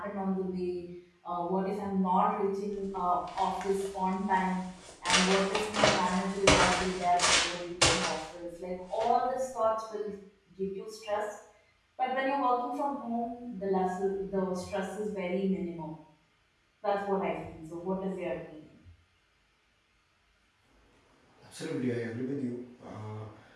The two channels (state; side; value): identical; both; correlation 1.00